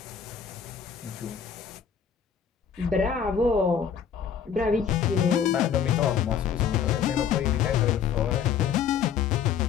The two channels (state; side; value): quieter; right; 7.6 dB